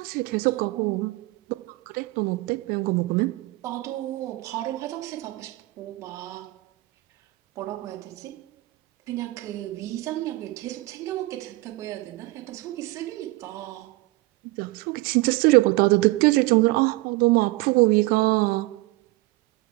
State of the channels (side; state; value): left; quieter; 20.9 dB